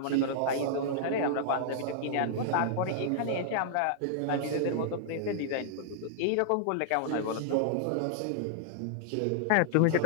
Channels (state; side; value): different; both; correlation -0.01